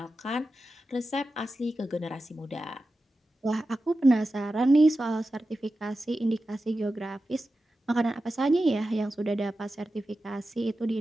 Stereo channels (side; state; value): both; normal; correlation 0.92